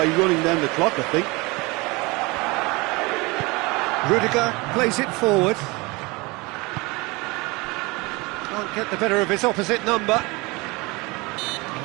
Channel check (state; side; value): quieter; left; 24.9 dB